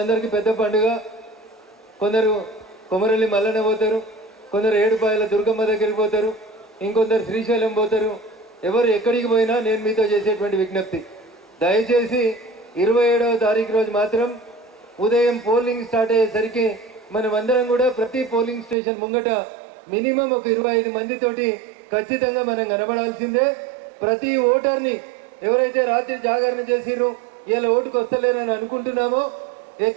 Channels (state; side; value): drops out; left; at 18.8 s